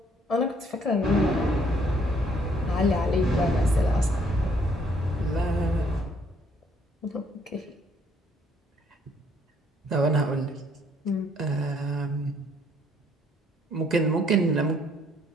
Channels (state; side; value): normal; both; correlation 0.66